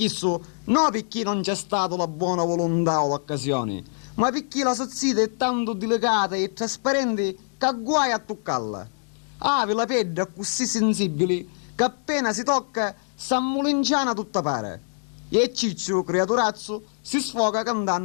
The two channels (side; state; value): right; silent; digital silence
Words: non perché non c'è stata la buona volontà o l'occasione, ma perché la sozzita è tanto delicata e trasparente che guai a toccarla. Ave la pelle così sensibile che appena si tocca s'ammulinciana tutta pare. E Ciccio, creaturazzo, si sfoga